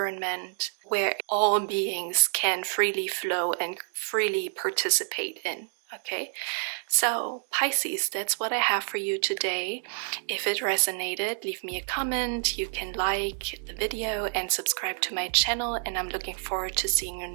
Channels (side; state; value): left; silent; 59 dB below the other